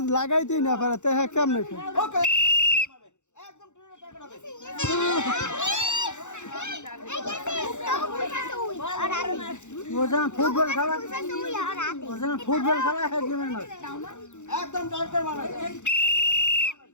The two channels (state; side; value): late; right; 0.84 ms